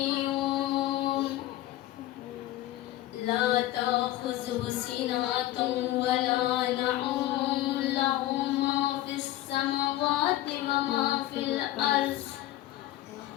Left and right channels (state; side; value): quieter; right; 14.9 dB